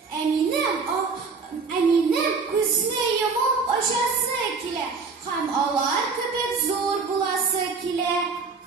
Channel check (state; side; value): quieter; left; 4.7 dB